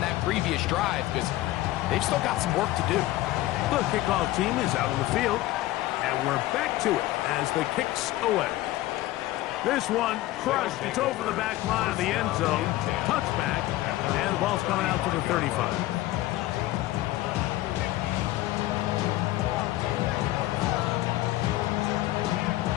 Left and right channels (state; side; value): quieter; right; 16.5 dB